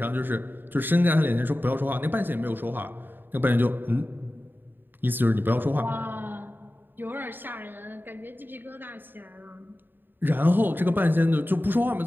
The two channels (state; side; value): late; left; 0.094 ms